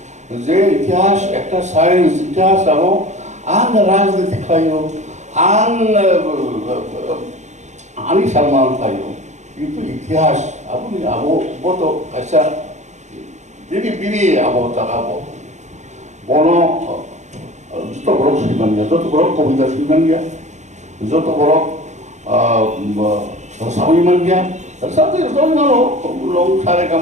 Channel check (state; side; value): late; left; 0.34 ms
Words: যে ইতিহাস একটা সায়েন্স ইতিহাস আবো আং রাজনীতি খাইও আং আনি সম্মান খাইও কিন্তু ইতিহাস আপনি আবো বত আচ্ছা বিনি আবো তাকাবো বড় যত বড় শ্রীমান গিয়া যত বড় কবিতা শ্রীমান গিয়া যত বড় সাবিমান গিয়া সাথে লং সারে